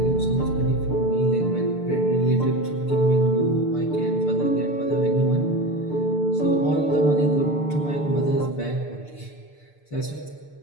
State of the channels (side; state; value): right; late; 6.8 ms